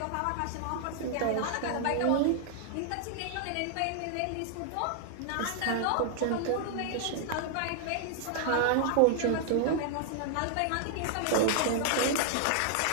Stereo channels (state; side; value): different; both; correlation -0.01